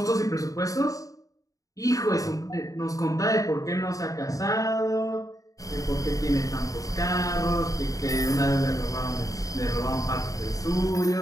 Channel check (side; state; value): right; late; 0.16 ms